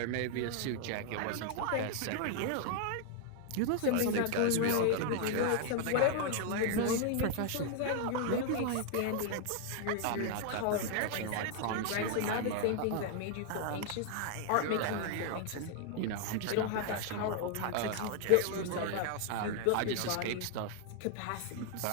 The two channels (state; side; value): different; both; correlation 0.00